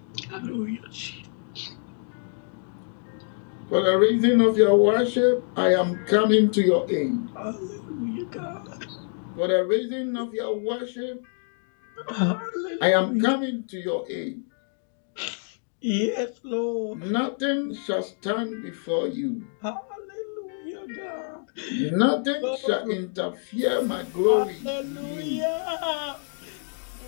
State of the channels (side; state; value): right; silent; 61 dB below the other